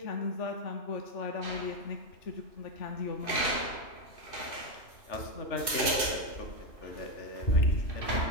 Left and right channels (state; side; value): late; right; 2.6 ms